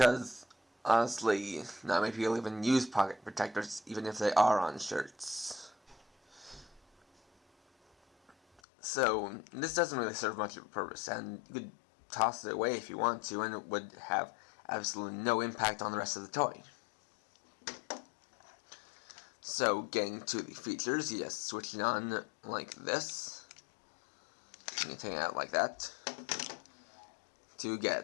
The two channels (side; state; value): right; drops out; at 8.6 s